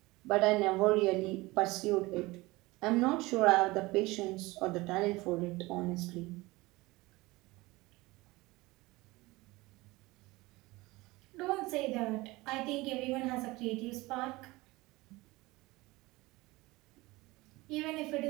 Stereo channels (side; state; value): left; quieter; 21.3 dB